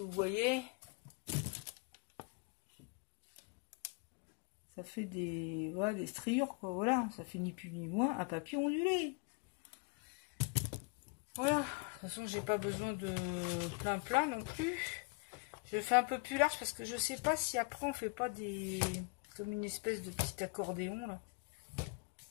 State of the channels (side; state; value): right; quieter; 31.5 dB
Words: voyez. Ça fait des striures quoi, voilà. Ça fait ni plus ni moins un papier ondulé. Voilà, de toute façon j'ai pas besoin de plein non plus. Je fais un peu plus large parce que je sais pas si après on fait pas des... comme une espèce de petit accordéon là.